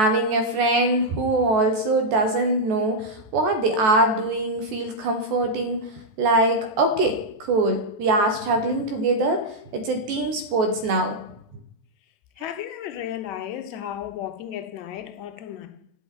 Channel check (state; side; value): late; left; 14 ms